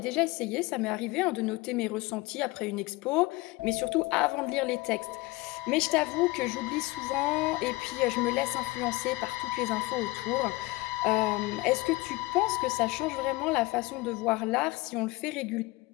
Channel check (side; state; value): right; quieter; 22.1 dB